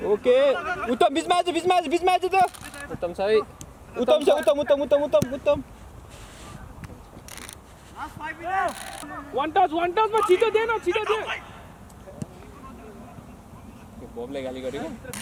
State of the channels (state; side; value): identical; both; correlation 1.00